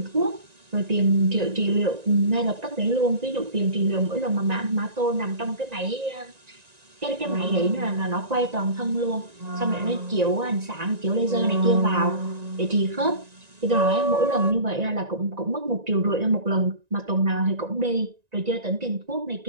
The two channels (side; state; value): left; late; 1.9 ms